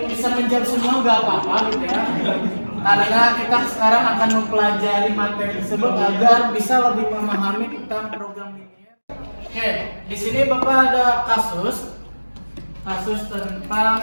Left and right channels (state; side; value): inverted; both; correlation -1.00